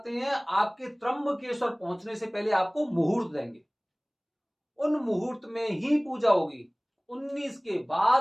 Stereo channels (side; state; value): both; identical; correlation 1.00